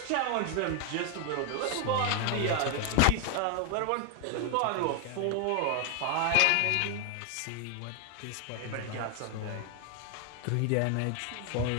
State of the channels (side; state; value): both; different; correlation 0.00